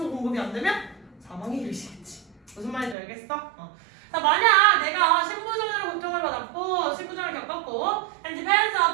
공급이 안 되면 사망이 일으키겠지. 무슨 말인지 알겠어? 자, 만약 내가 심부전으로 고통을 받았고 심부전을 겪었고 and depends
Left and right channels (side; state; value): left; drops out; at 3.0 s